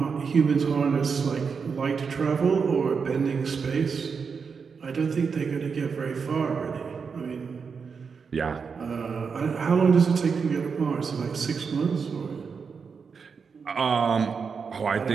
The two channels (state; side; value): quieter; left; 5.7 dB